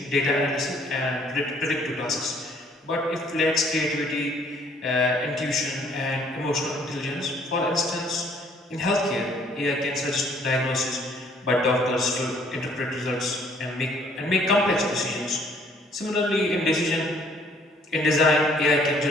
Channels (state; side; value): normal; both; correlation 0.61